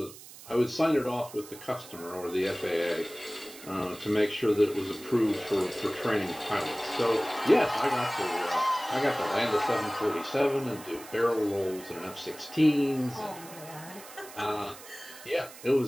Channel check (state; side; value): noise; right; hiss, 17 dB below the sound